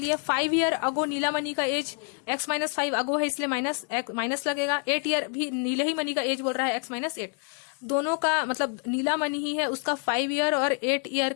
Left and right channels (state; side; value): quieter; right; 39.1 dB